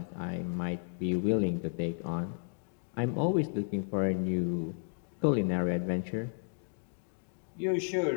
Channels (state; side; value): silent; right; digital silence